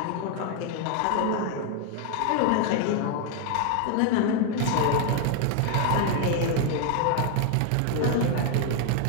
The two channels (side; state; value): both; different; correlation 0.00